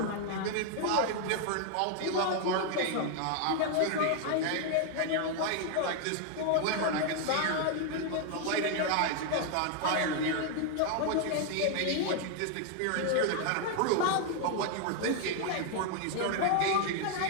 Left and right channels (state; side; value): different; both; correlation 0.00